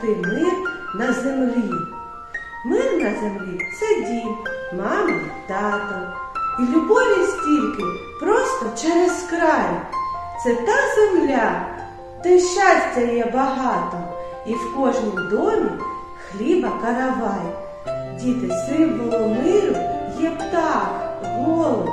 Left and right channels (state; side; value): identical; both; correlation 1.00